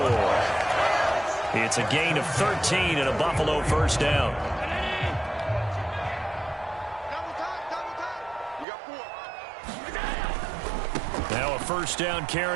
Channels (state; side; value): drops out; left; at 8.7 s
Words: It's a gain of 13 and a Buffalo first down. Now a first down